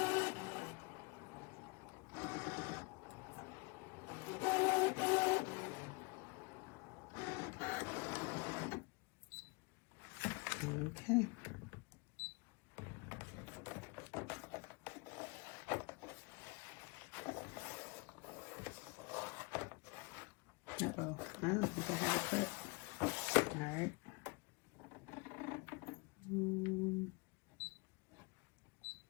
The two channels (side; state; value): right; quieter; 28.8 dB